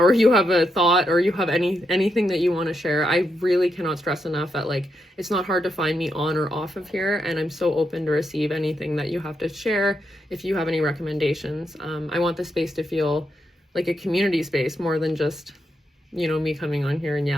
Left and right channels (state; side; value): normal; both; correlation 0.82